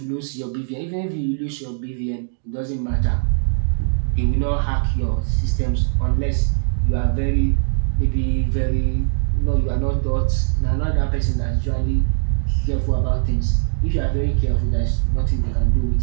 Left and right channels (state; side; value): silent; left; digital silence